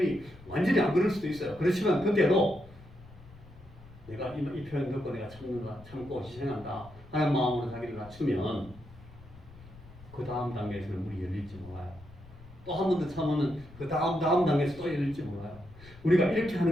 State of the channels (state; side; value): noise; left; rumble, 20 dB below the sound